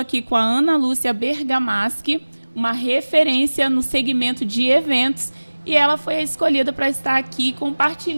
com a Ana Lúcia Bergamaschi, uma referência no segmento de eventos, e ela foi escolhida para estar aqui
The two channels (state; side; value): inverted; both; correlation -1.00